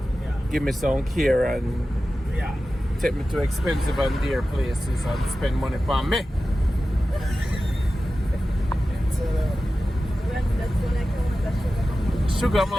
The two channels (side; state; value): both; normal; correlation 0.94